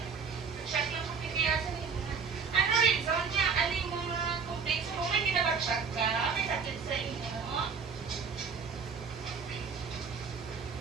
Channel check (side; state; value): left; quieter; 5.7 dB